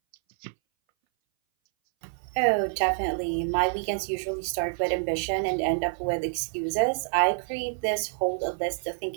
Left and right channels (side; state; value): left; silent; 60 dB below the other